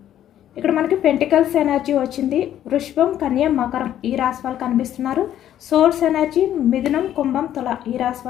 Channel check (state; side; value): quieter; right; 11.3 dB